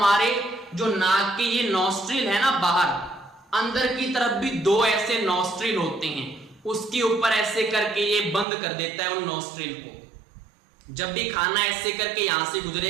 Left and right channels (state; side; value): drops out; left; at 8.5 s